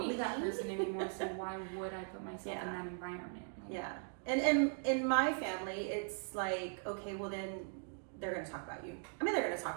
that person anymore. So why would I put myself in that environment? Like, and in my family, it's like, okay, well then they're going to talk about you. I mean, they're going to talk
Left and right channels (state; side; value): silent; left; 51 dB below the other